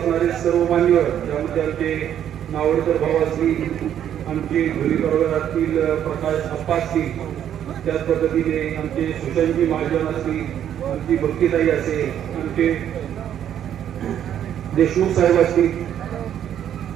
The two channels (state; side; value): quieter; left; 10.1 dB